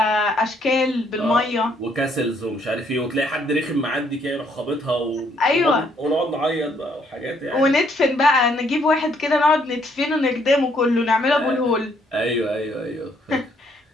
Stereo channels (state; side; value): normal; both; correlation 0.68